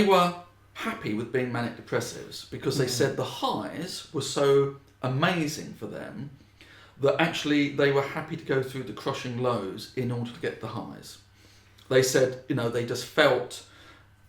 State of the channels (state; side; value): identical; both; correlation 1.00